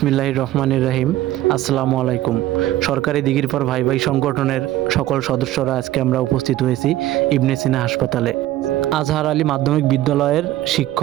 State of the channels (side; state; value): left; quieter; 14.9 dB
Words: রহমানির রহিম। আসসালামু আলাইকুম। সরকারি দিঘির পর ভাই ভাই সংগঠনের সকল সদস্যরা আজকে আমরা উপস্থিত হয়েছি ইবনে সিনা হাসপাতালে। আজহার আলী মাধ্যমিক বিদ্যালয়ের